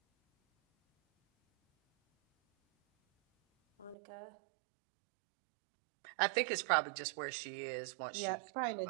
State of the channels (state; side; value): drops out; left; at 4.0 s